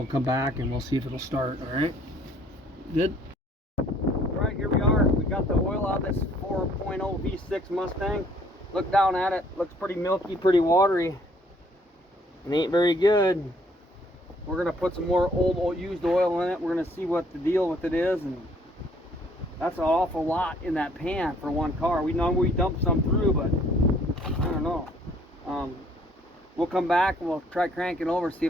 come back and we'll see if it'll start. All right, good. All right, here we are. We got the oil out of this 4.0 V6 Mustang. Look down at it. Looks pretty milky, pretty watery. It ain't very good. We're gonna put some more old used oil in it. We're gonna see what the deal with it is, and that's an awful lot in that pan for one car. We know we dumped some through, but I don't know. We'll come back and we'll try cranking over, see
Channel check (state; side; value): normal; both; correlation 0.61